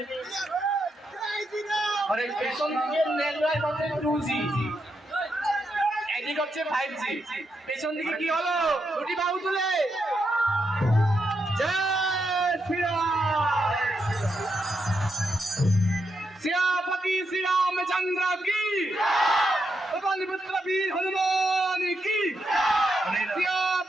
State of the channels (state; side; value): normal; both; correlation 0.82